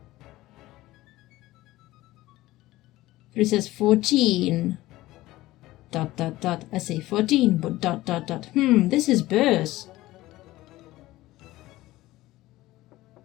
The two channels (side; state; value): right; quieter; 17.3 dB